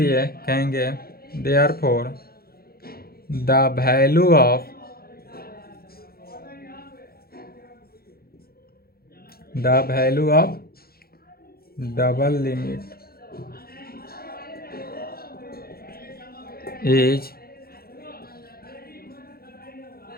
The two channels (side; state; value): right; late; 0.44 ms